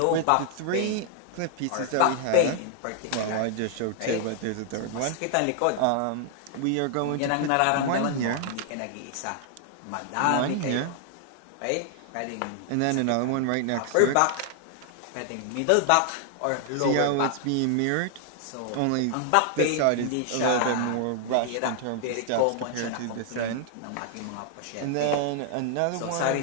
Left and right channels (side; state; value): both; different; correlation 0.00